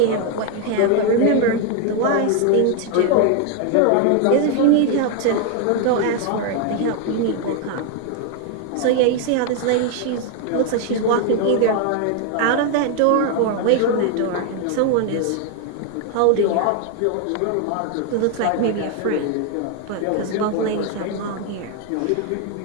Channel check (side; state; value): both; different; correlation 0.01